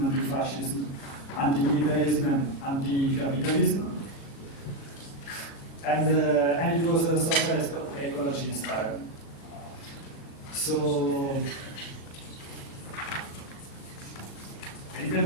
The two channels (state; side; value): late; right; 36 ms